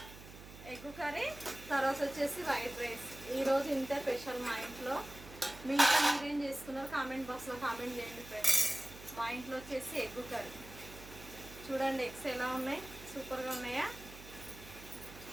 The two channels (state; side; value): noise; right; hum, 16 dB below the sound